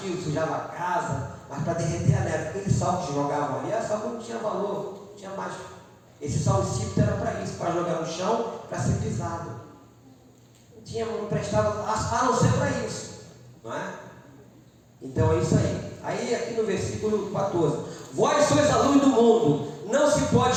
sujava a casa, mas para derreter a neve, aquele sal que jogavam ali, era sal que não tinha valor, não tinha mais. Esse sal insípido era para isso, para jogar no chão, para ser pisado. não prestava a não ser para isso, não é? Então é isso aí. Aí aqui no versículo 14: vós sois a luz do mundo, não se pode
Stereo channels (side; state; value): both; identical; correlation 1.00